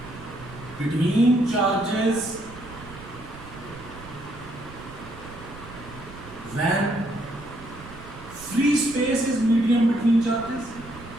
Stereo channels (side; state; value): right; noise; rumble, 16 dB below the sound